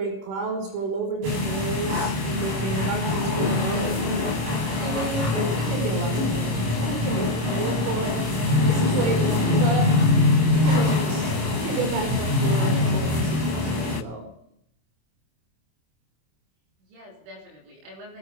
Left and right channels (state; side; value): late; left; 26 ms